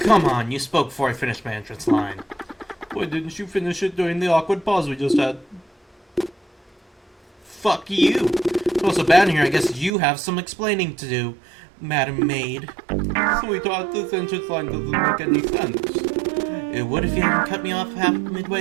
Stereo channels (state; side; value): drops out; left; at 9.9 s